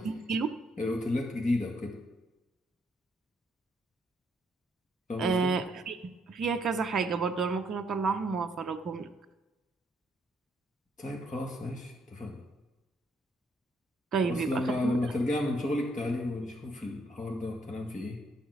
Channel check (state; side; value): normal; both; correlation 0.72